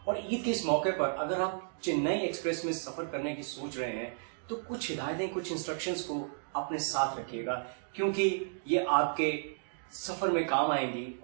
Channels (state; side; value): silent; left; digital silence